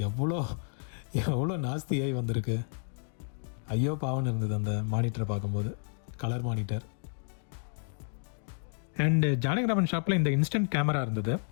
எவ்வளோ நாஸ்தியாகி வந்திருக்கு. ஐயோ பாவன்னு இருந்தது அந்த மானிட்டரை பார்க்கும்போது. Colour monitor. அண்ட் ஜானகிராமன் ஷாப்பில் இந்த இன்ஸ்டன்ட் கேமரா இருந்தது.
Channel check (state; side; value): silent; right; 57 dB below the other